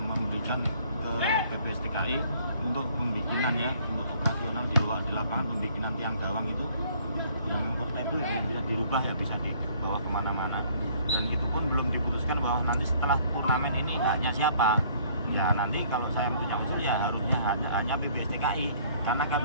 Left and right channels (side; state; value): both; inverted; correlation -0.59